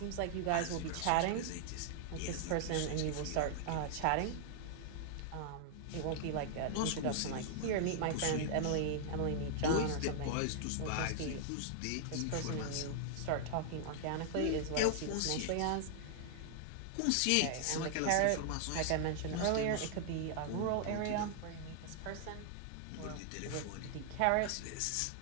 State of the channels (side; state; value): both; different; correlation -0.01